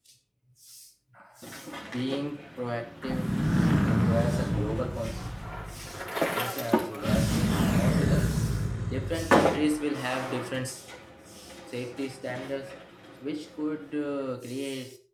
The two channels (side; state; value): both; identical; correlation 1.00